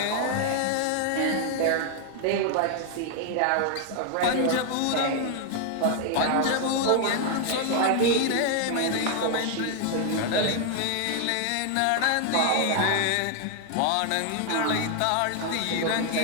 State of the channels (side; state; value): both; different; correlation 0.00